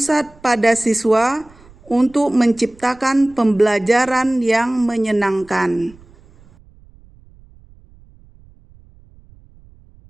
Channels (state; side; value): noise; right; rumble, 26 dB below the sound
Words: pada siswa untuk menciptakan pembelajaran yang menyenangkan.